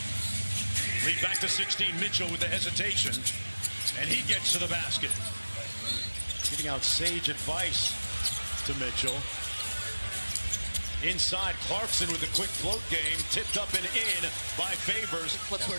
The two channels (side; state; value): both; inverted; correlation -1.00